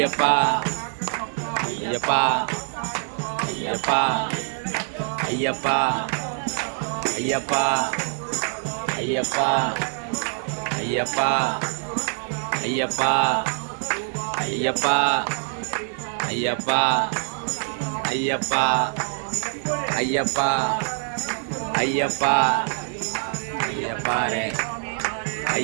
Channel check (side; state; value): left; silent; 62 dB below the other